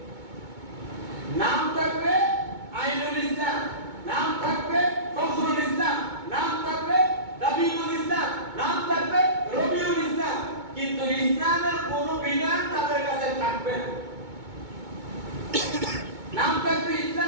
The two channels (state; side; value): late; left; 2.2 ms